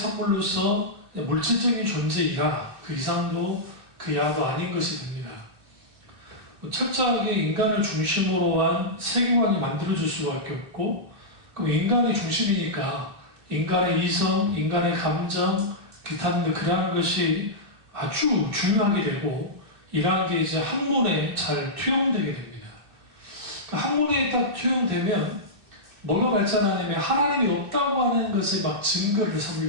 물질적인 존재이라 그 이상도 그 이하도 아닌 것이 됩니다. 철저하게 인간을 중심으로 한 세계관이 만들어질 수밖에 없고, 그럼 인간이 중심이니까 인간의 이성, 인간의 감정, 기타 등 그러한 것이 아주 중요하게 되고, 이러한 게 이제 학문에 잘 투영되게 됩니다. 학문에 딱 투영되면 뭐가 발전하냐면 하나님이 없다고 하는 것에 막 증거를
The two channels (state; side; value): late; left; 2.6 ms